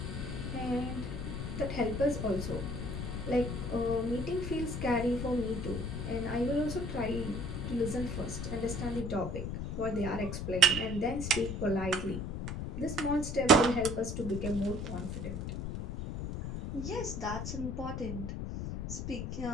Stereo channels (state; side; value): noise; left; rumble, 4 dB below the sound